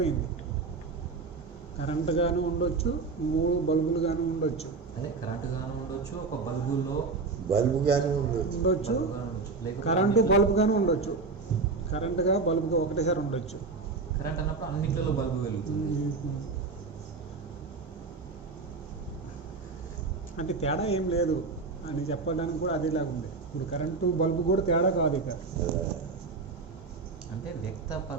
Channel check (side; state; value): left; quieter; 4.2 dB